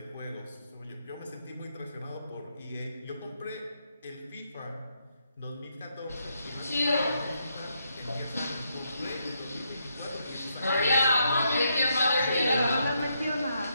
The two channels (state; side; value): inverted; both; correlation -0.78